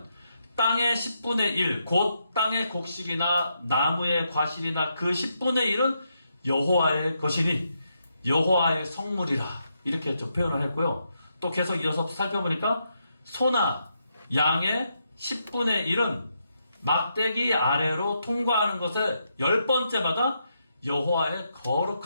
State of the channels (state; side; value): inverted; both; correlation -0.81